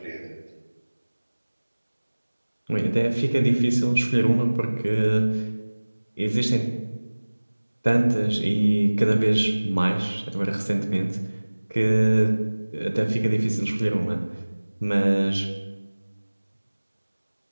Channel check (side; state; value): both; inverted; correlation -1.00